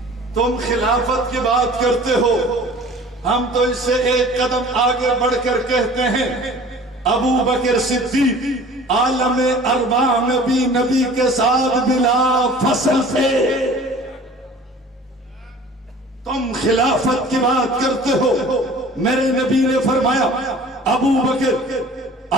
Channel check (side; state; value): both; normal; correlation 0.46